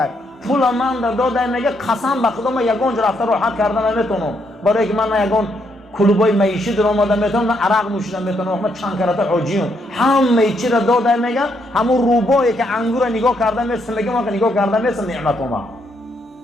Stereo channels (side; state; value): both; normal; correlation 0.75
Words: پول من داده میگه قسم به خدا من یگان جا رفته راحت کردن نمیتونم، برای که من یگان کلوبای معیشی در آمده میتونم، نه عرق نوشیدن میتونم، من چند کرات حاجیون همه چی را داده میگه. همون روبایی که انگور نگاه کرده میسه میگه من که نگاه کرده میسه نعمت ما.